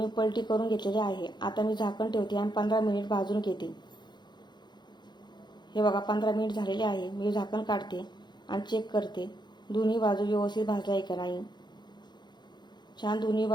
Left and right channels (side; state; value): right; late; 0.21 ms